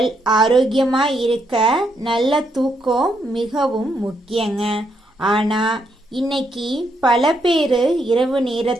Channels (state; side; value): normal; both; correlation 0.77